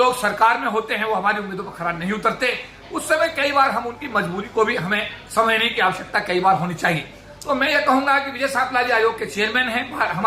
सरकार में होते हैं वो हमारी उम्मीदों पर खरा नहीं उतरते। उस समय कई बार हम उनकी मजबूरी को भी हमें समझने की आवश्यकता कई बार होनी चाहिए। तो मैं ये कहूंगा कि विजय सापला जी आयोग के चेयरमैन हैं,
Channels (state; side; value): identical; both; correlation 1.00